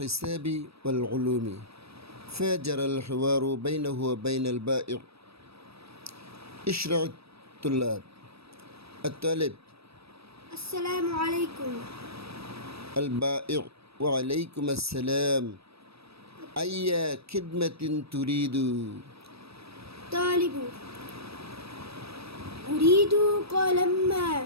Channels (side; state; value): left; late; 0.78 ms